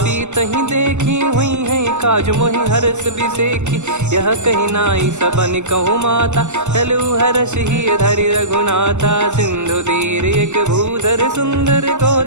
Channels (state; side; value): late; left; 0.83 ms